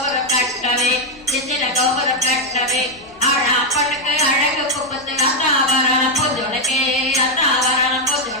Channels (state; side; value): normal; both; correlation 0.02